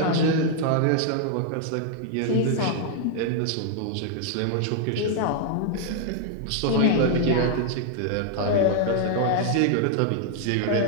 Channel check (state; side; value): different; both; correlation 0.00